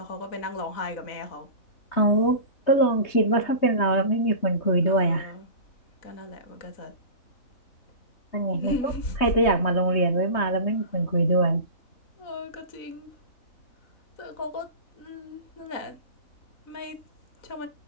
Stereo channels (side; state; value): right; late; 3.2 ms